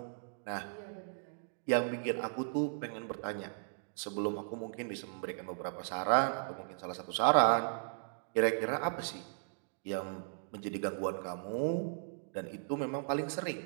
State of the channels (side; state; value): left; silent; digital silence